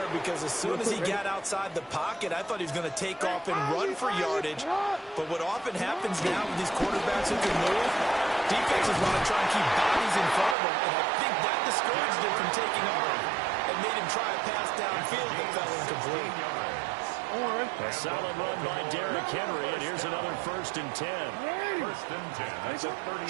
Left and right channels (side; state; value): left; drops out; at 10.6 s